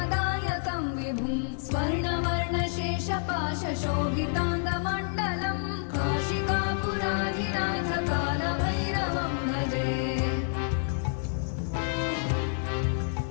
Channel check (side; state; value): right; silent; digital silence